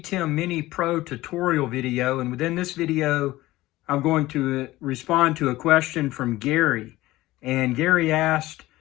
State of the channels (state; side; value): quieter; right; 17.6 dB